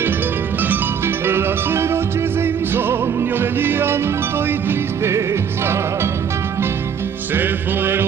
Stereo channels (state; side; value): quieter; left; 7.4 dB